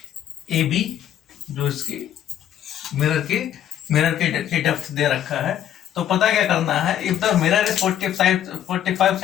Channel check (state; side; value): quieter; right; 10.7 dB